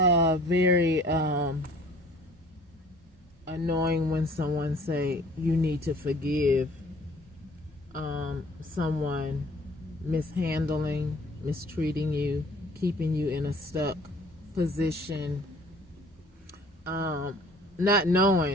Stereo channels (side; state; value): both; normal; correlation 0.52